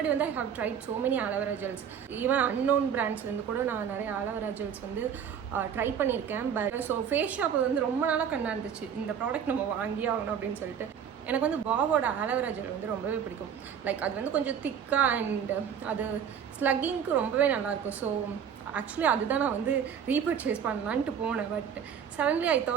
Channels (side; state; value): left; quieter; 8.0 dB